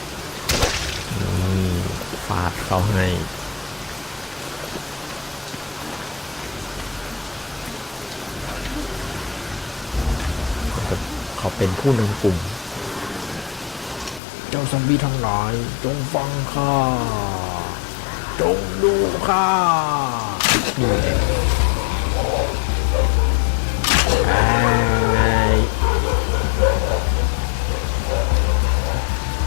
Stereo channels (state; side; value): drops out; right; at 14.2 s